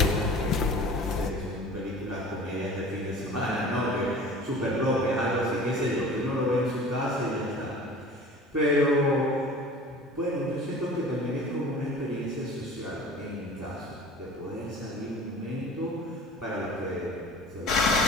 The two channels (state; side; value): normal; both; correlation 0.42